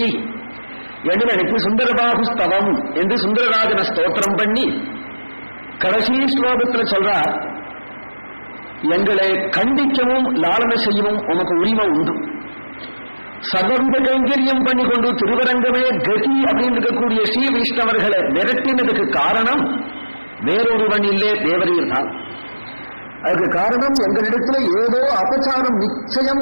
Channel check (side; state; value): both; inverted; correlation -1.00